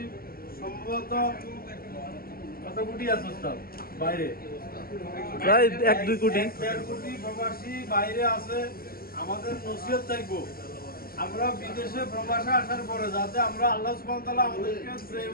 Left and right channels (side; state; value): right; late; 0.43 ms